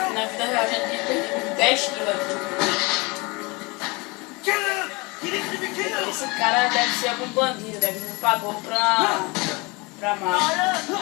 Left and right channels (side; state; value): right; quieter; 26.3 dB